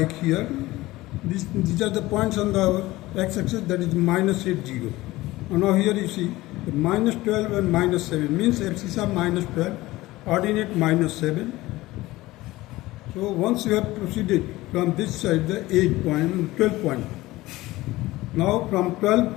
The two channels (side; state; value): right; quieter; 18.4 dB